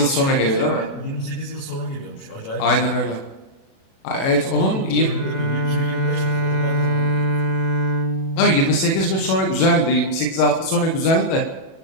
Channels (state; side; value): late; right; 37 ms